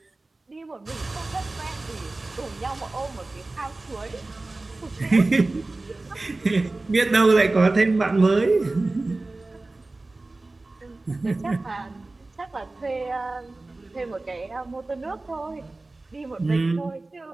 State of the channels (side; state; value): left; quieter; 3.1 dB